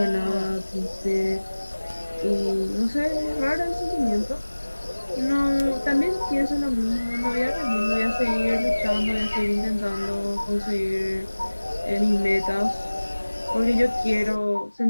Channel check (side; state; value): both; inverted; correlation -1.00